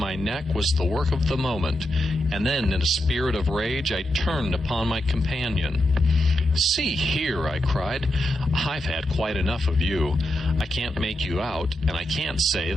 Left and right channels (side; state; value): both; normal; correlation 0.86